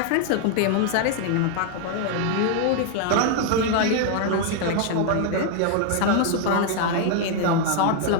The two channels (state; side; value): different; both; correlation 0.00